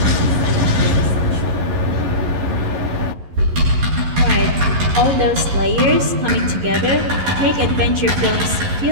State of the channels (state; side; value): late; left; 11 ms